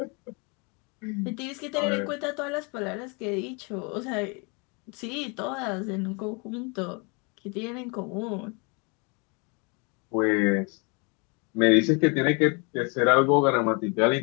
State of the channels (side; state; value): right; quieter; 32.3 dB